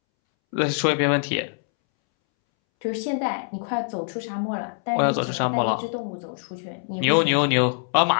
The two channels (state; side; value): silent; right; 63 dB below the other